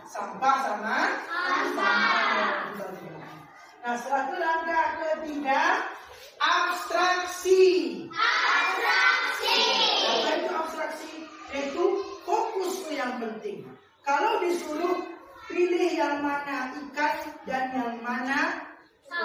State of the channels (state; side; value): identical; both; correlation 1.00